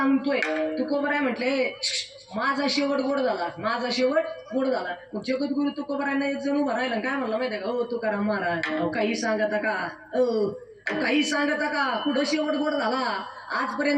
तुकोबराय म्हटले माझा शेवट गोड झाला, माझा शेवट गोड झाला. मग जगद्गुरु तुकोबरायांना एक जण उभा राहिला, काय म्हणलं माहितीये का, हो तुकाराम महाराज अहो काही सांगता का, काही सांगता का, कुठं शेवट गोड झाला?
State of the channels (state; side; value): identical; both; correlation 1.00